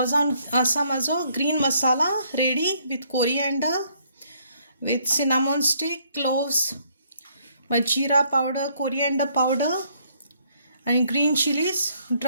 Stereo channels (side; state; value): both; inverted; correlation -0.67